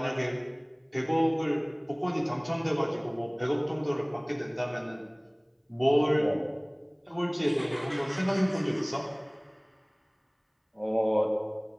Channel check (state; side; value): identical; both; correlation 1.00